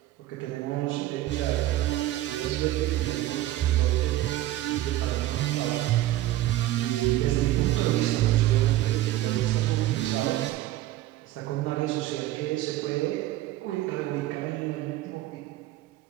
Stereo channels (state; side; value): quieter; left; 15.1 dB